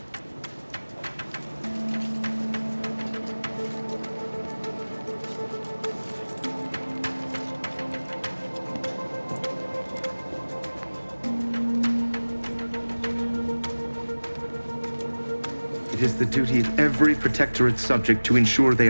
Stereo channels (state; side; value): inverted; both; correlation -1.00